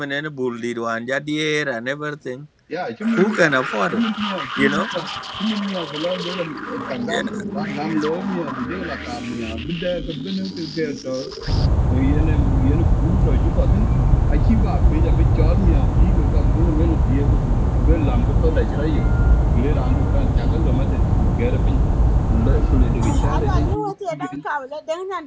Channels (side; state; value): both; identical; correlation 1.00